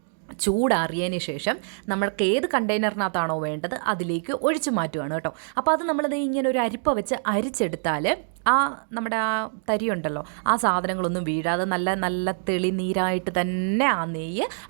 ചൂടാറിയതിന് ശേഷം നമ്മൾക്ക് ഏത് കണ്ടെയ്നറിനകത്താണോ വേണ്ടത് അതിലേക്ക് ഒഴിച്ച് മാറ്റുകയാണ് കേട്ടോ. അപ്പോൾ അത് നമ്മളത് ഇങ്ങനെ ഒരു അരിപ്പ വെച്ച് അരിച്ചെടുത്താൽ നമ്മുടെ ആ തരിയുണ്ടല്ലോ, ആ സാധനങ്ങളൊന്നും വീഴാതെ നല്ല തെളിനീരായിട്ട് തന്നെ ആ നെയ്യ്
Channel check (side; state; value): left; silent; digital silence